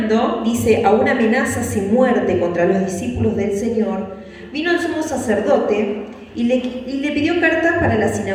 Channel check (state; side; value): identical; both; correlation 1.00